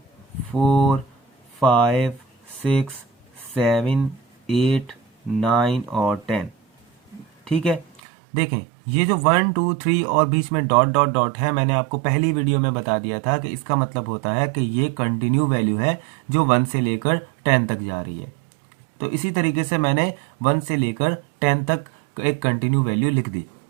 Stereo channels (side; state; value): left; drops out; at 8.0 s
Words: 4 5 6 7 8 9 और 10। ठीक है, देखें ये जो 1 2 3 और बीच में डॉट डॉट डॉट है, मैंने आपको पहली वीडियो में बता दिया था कि इसका मतलब होता है कि ये कंटिन्यू वैल्यू है जो 1 से लेकर 10 तक जा रही है। तो इसी तरीके से मैंने 1 से लेकर 10 तक एक कंटिन्यू वैल्यू लिख दी।